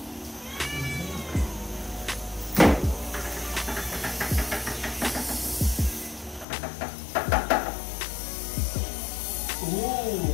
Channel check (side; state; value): right; drops out; at 6.5 s